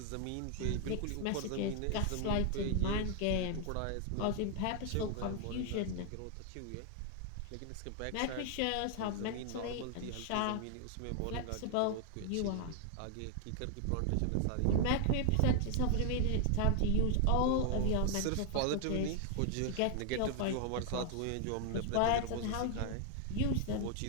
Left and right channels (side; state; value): both; different; correlation 0.00